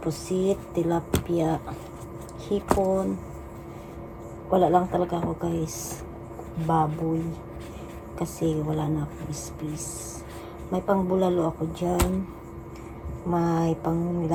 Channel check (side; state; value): both; identical; correlation 1.00